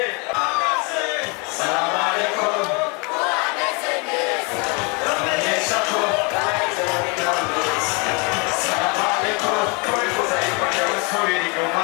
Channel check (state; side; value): quieter; right; 31.6 dB